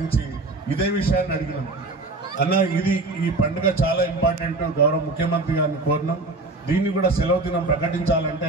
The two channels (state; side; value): quieter; left; 3.1 dB